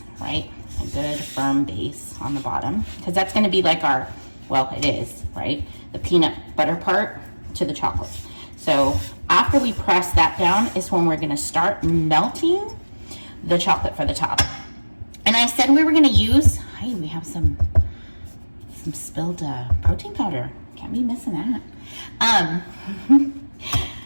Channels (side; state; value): both; inverted; correlation -1.00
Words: right? A good firm base on the bottom, because that's going to be like our, well, it is, right? The peanut butter part to the chocolate. So after we press that down is when we're going to start melting the chocolate for the top. And I said we were going to use, hey, we have some spilled protein powder. Can't be missing that.